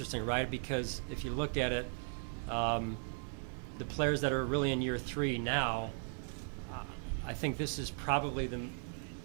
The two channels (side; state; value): left; silent; 53 dB below the other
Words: right? Because if you look at it, the players that are really in year three now, I think this is probably the